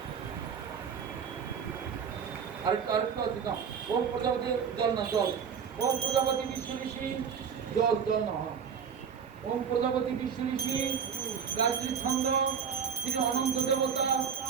আরেকটা আছে না, ওম প্রজাপতি জল না, জল, ওম প্রজাপতি বিশ্ব ঋষি জল, জল না হয়, ওম প্রজাপতি বিশ্ব ঋষি গায়ত্রী ছন্দ শ্রী অনন্ত দেবতা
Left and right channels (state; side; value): quieter; left; 7.0 dB